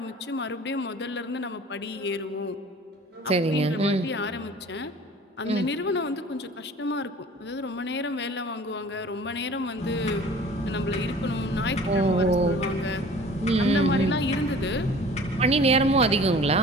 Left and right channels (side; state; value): both; normal; correlation 0.46